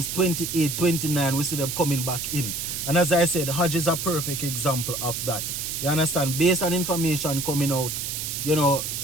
28, 29, we see them coming back in. And as I said, Hodge is a perfect example of that. You understand? Based on information coming out,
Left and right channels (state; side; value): noise; right; hiss, 4 dB below the sound